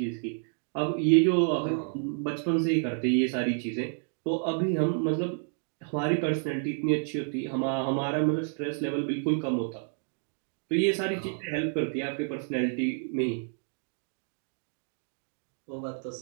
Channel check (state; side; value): silent; left; 58 dB below the other